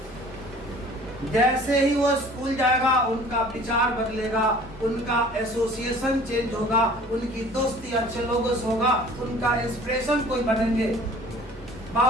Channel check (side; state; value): both; normal; correlation 0.49